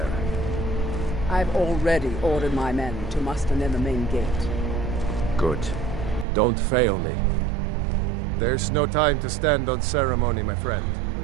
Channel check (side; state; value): left; drops out; at 6.2 s